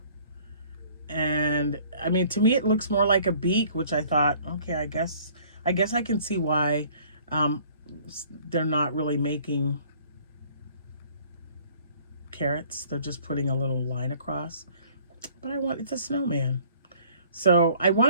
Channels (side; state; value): both; inverted; correlation -0.55